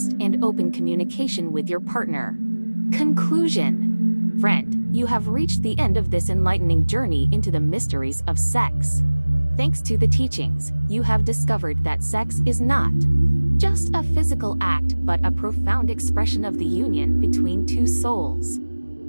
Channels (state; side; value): inverted; both; correlation -1.00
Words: and open communication with your partner. Conclusion. Friend, you have reached the end of this enlightening journey into the mysteries of sex. Thanks to the teachings, you have discovered that sex is not just a physical act, but a profound expression of the union between two souls.